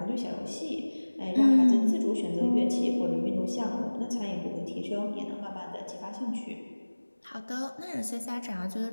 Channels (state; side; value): inverted; both; correlation -1.00